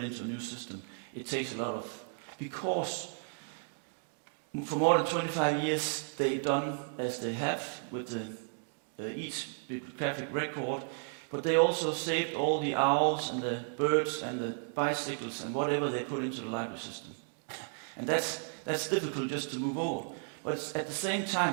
into a new system. It takes a lot of, because for more than 25 years they've done as they have with each bibliographic record, but they also saved all the owls and the birds and the bicycles and whatever they put into the library system. And that's difficult just to move over. But at the same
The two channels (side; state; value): left; silent; 55 dB below the other